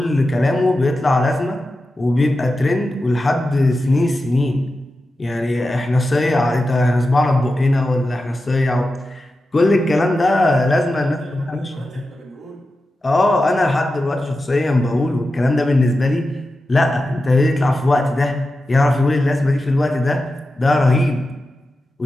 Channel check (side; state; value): both; normal; correlation 0.92